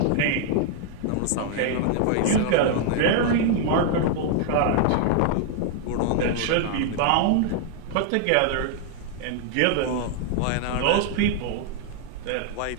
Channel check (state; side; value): different; both; correlation 0.00